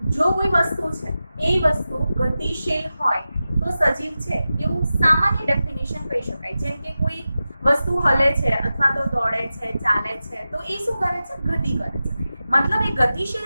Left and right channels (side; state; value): both; inverted; correlation -0.94